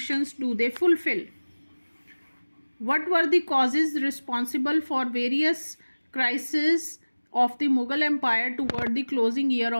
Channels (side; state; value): both; inverted; correlation -1.00